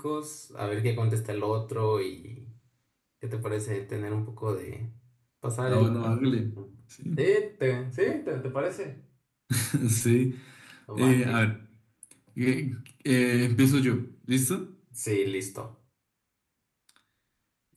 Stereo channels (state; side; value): identical; both; correlation 1.00